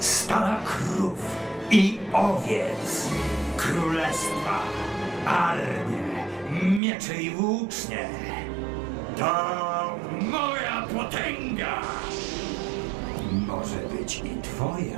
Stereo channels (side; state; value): left; drops out; at 6.8 s